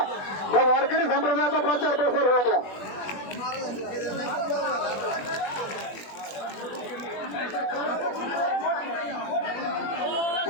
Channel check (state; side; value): late; right; 21 ms